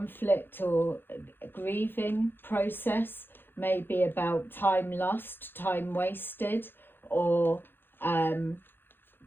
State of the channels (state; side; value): late; right; 0.10 ms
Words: or grieving process, maybe about time lost, time wasted, or